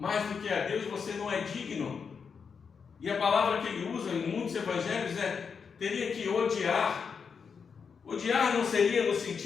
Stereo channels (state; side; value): quieter; right; 6.0 dB